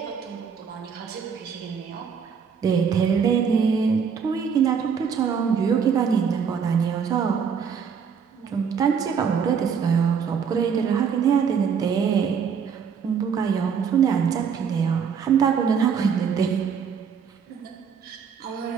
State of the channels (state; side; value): quieter; left; 6.7 dB